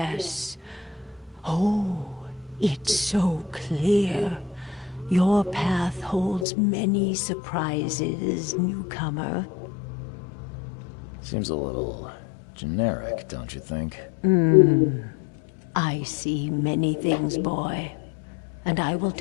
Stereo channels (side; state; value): right; drops out; at 6.5 s